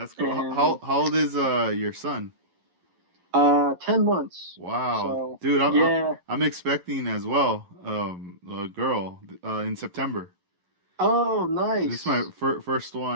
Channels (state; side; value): late; left; 11 ms